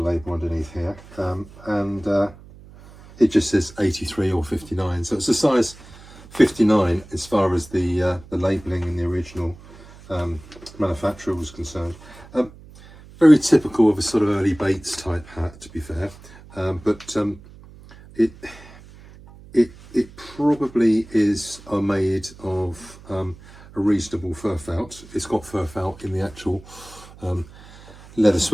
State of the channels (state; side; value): noise; right; hum, 20 dB below the sound